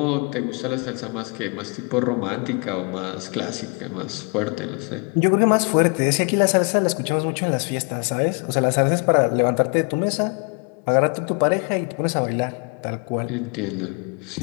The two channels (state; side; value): quieter; right; 35.1 dB